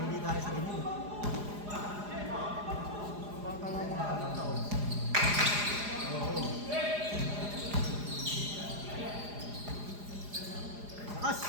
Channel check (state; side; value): late; left; 4.9 ms